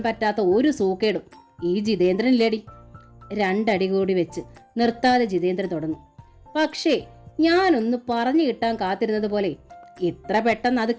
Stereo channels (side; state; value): both; identical; correlation 1.00